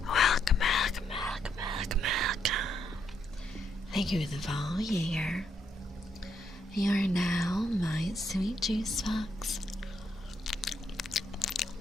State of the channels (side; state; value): both; normal; correlation 0.76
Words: Welcome. Thank you for the follow, Jaeger. You are now my sweet juice box.